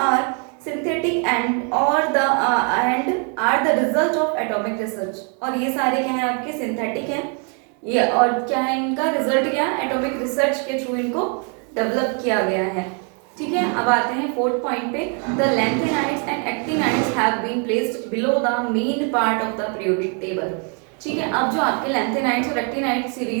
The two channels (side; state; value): left; quieter; 38.8 dB